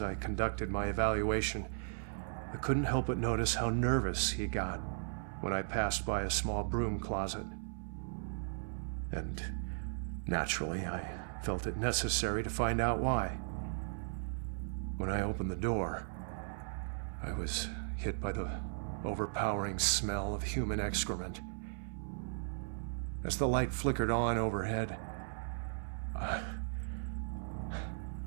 I conducted my evaluation, I couldn't help but notice how nervous he got when I passed by a small broom closet. And naturally, I felt it necessary to find out why. When I opened the door, I was hit by the overpowering smell of human excrement. As the light flickered on overhead, I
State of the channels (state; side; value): silent; left; 53 dB below the other